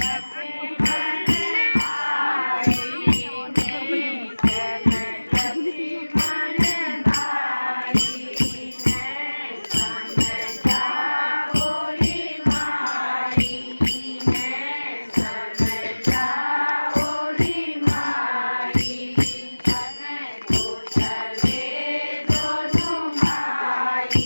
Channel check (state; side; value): inverted; both; correlation -1.00